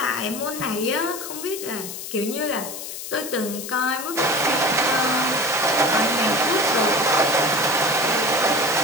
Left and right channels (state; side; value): noise; left; hiss, 9 dB below the sound